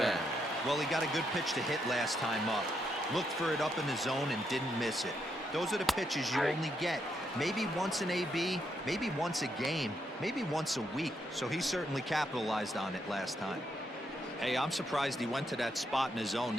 Well, he got a good pitch to hit last time up. Looked for it up in the zone and didn't miss it. Those are the pitches you only get. Maybe once an AB, maybe once a game, maybe once a week. So he certainly capitalized on it last time. Hey, I'm surprised he went to that spot in his zone.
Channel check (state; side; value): normal; both; correlation 0.79